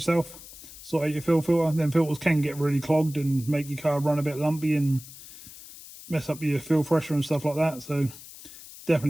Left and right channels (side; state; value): left; noise; hiss, 17 dB below the sound